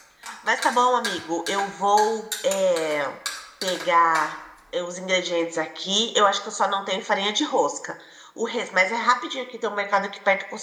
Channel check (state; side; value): identical; both; correlation 1.00